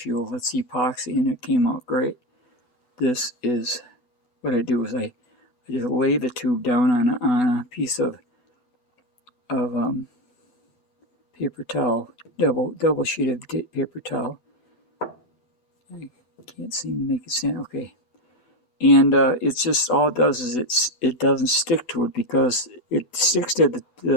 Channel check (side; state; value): right; late; 8.0 ms